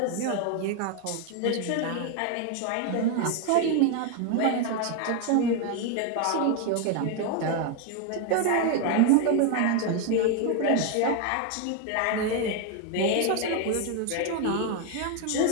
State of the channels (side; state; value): both; different; correlation 0.01